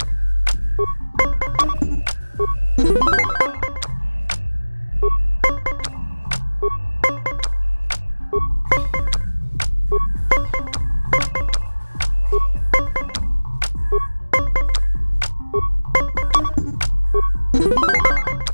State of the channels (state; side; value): inverted; both; correlation -1.00